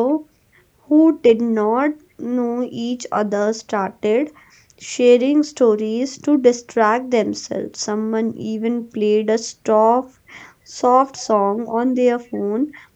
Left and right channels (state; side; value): identical; both; correlation 1.00